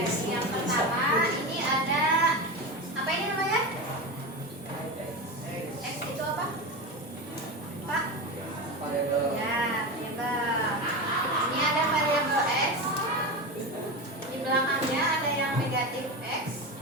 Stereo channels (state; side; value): normal; both; correlation 0.21